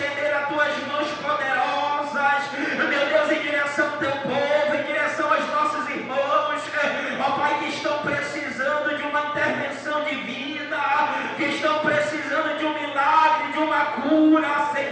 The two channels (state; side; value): identical; both; correlation 1.00